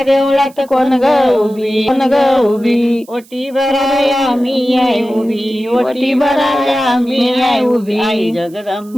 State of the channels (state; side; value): noise; right; hiss, 27 dB below the sound